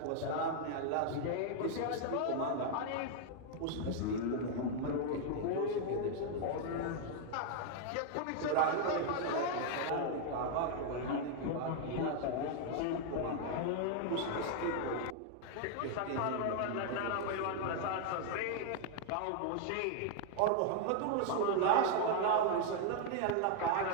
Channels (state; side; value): different; both; correlation 0.00